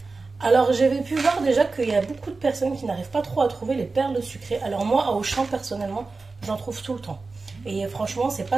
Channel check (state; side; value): quieter; left; 3.9 dB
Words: Alors j'avais pu voir déjà qu'il y a beaucoup de personnes qui n'arrivent pas trop à trouver les perles sucrées. Alors moi à Auchan personnellement j'en trouve tout le temps et franchement c'est